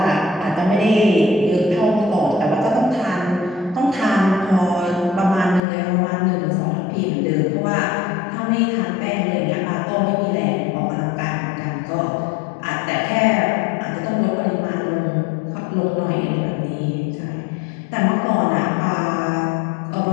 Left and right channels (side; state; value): right; drops out; at 5.6 s